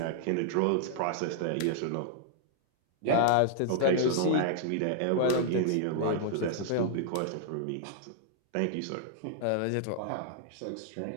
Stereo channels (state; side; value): different; both; correlation -0.01